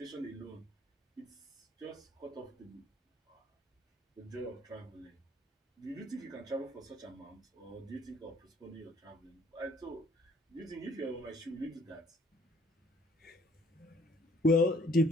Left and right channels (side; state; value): both; normal; correlation 0.60